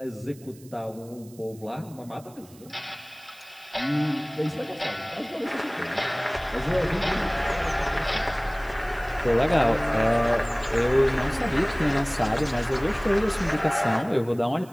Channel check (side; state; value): right; noise; hiss, 24 dB below the sound